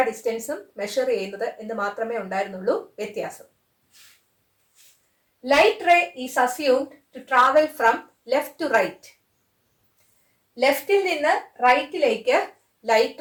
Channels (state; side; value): identical; both; correlation 1.00